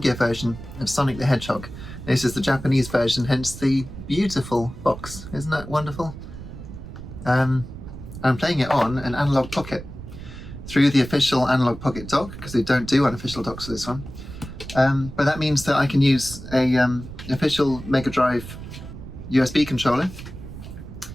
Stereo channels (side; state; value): right; noise; rumble, 12 dB below the sound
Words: version of Sonic the Hedgehog. This is the Japanese version, hence the beautiful box. Isn't that wonderful? I'm playing it on an Analogue Pocket through the official Analogue Pocket Dock, because they don't do unofficial docks for this one. But that means that I can use a official Mega Drive USB controller.